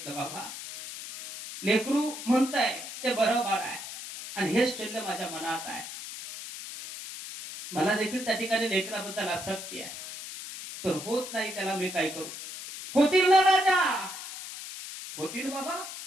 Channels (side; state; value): left; noise; hiss, 10 dB below the sound